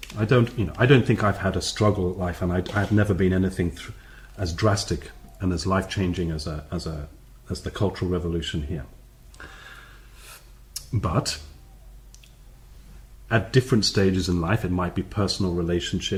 I don't think I've had a struggle life, and I've never been anything as drastic and as life-changing as the Cultural Revolution here. But at different stages in life, it might be personal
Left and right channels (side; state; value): both; identical; correlation 1.00